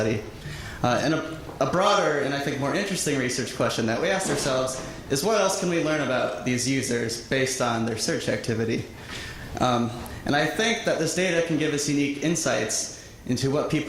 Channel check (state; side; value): identical; both; correlation 1.00